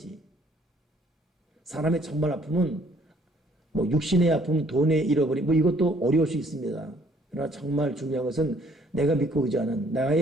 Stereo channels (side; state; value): both; normal; correlation 0.62